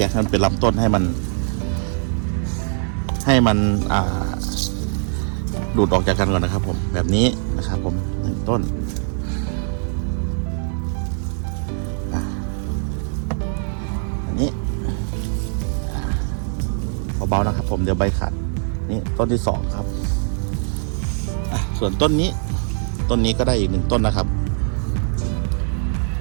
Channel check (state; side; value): silent; left; digital silence